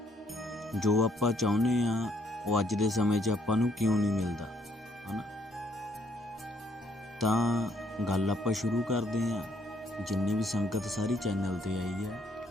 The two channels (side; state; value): both; normal; correlation 0.68